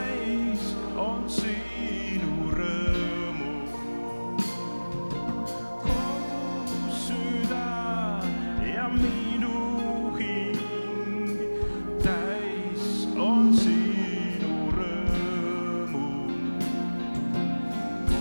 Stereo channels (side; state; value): both; inverted; correlation -1.00